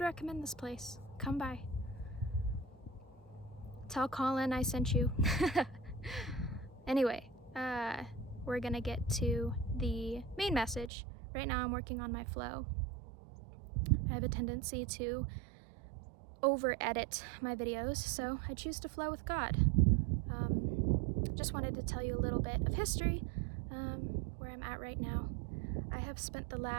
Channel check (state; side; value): drops out; left; at 10.9 s